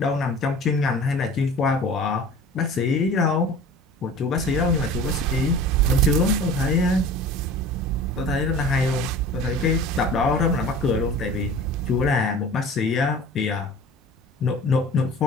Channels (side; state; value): both; normal; correlation 0.41